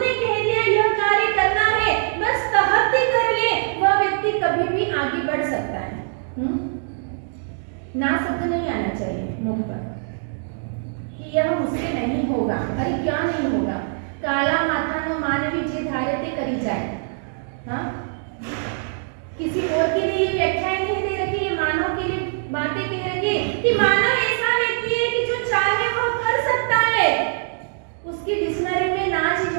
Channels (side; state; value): left; silent; digital silence